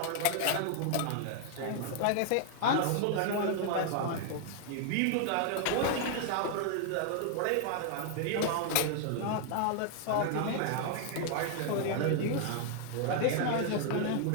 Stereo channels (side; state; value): both; different; correlation 0.00